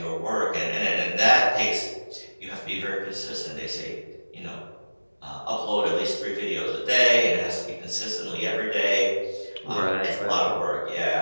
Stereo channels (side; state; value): both; inverted; correlation -1.00